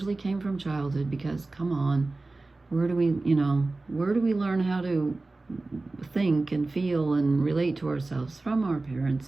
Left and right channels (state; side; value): quieter; left; 3.3 dB